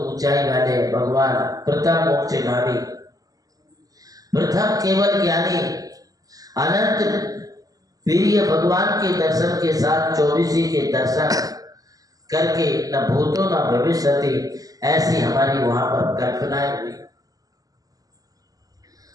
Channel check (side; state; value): left; late; 0.17 ms